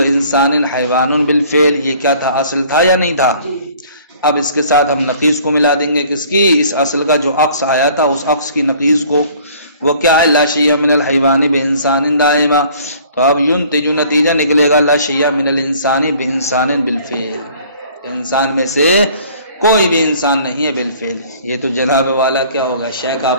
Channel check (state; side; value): inverted; both; correlation -0.54